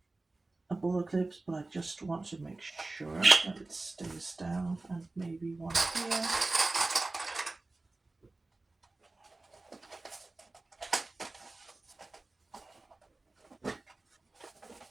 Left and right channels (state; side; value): quieter; left; 3.2 dB